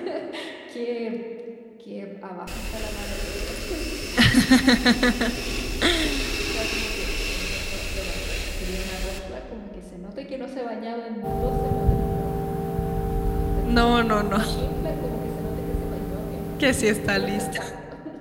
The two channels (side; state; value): both; identical; correlation 1.00